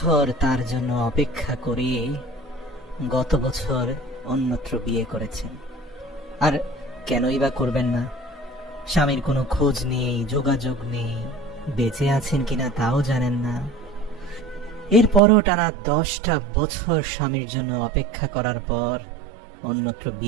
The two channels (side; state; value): left; drops out; at 15.2 s